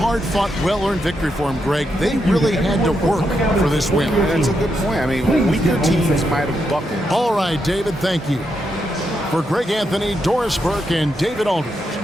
well-earned victory for them, Greg. They really had to work for this win. That's a good point. I mean, weaker teams might have buckled. All right, David, thank you. For Greg Anthony, Doris Burke, and David Aldridge,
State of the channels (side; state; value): both; normal; correlation 0.82